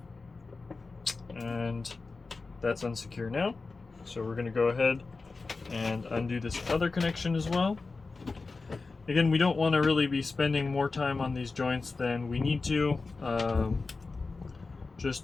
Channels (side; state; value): right; quieter; 4.0 dB